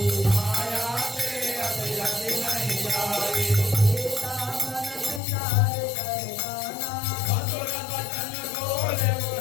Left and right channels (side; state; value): right; drops out; at 5.2 s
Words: माया से अभिरति नहीं जाई मधुर वचन बोले